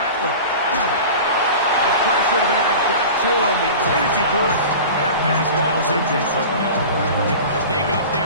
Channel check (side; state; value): both; inverted; correlation -0.35